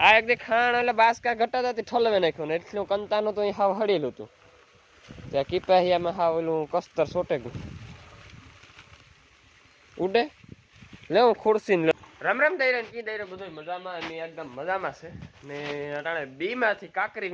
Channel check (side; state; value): both; identical; correlation 1.00